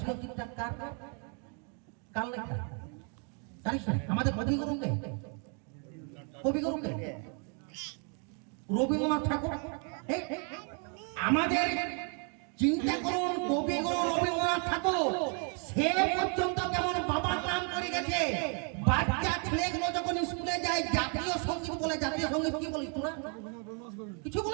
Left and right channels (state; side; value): quieter; left; 39.8 dB